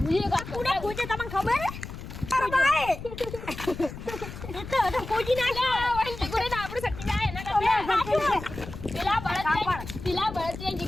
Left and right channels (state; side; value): noise; left; rumble, 11 dB below the sound